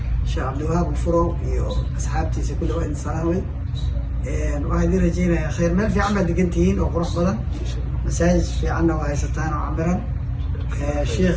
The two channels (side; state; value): both; identical; correlation 1.00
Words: شيخ عبد الوهاب الفرو أصحابتي كل واحد السلامي. واحد يرجينا يا خير ما في عمل دقنتين وقروح بدن مساجد في عنا وهي ستان وعمرا